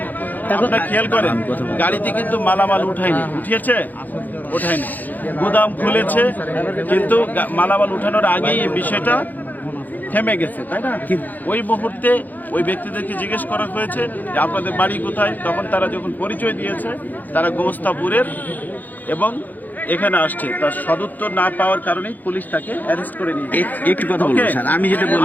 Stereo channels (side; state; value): right; late; 0.084 ms